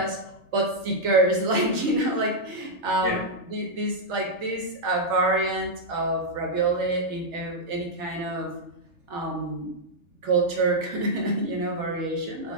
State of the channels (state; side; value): late; left; 3.3 ms